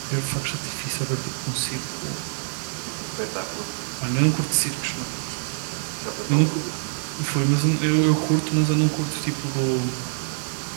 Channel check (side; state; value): left; silent; digital silence